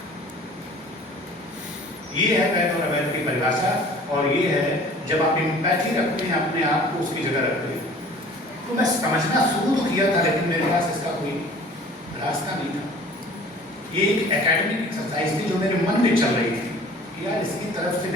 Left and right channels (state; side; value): normal; both; correlation 0.48